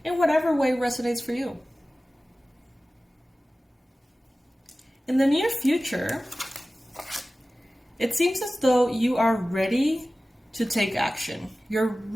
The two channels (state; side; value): normal; both; correlation 0.96